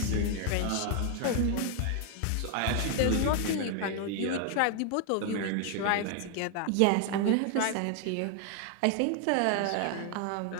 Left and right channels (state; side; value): different; both; correlation 0.00